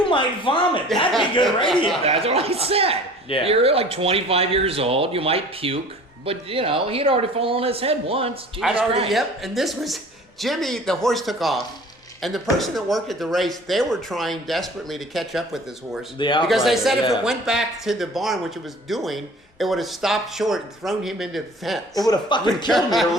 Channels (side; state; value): both; normal; correlation 0.46